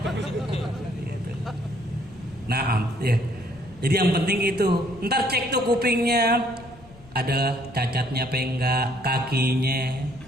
Nah, ya. Jadi yang penting itu, ntar cek tuh kupingnya, ada cacatnya apa enggak, kakinya.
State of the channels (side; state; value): left; noise; rumble, 22 dB below the sound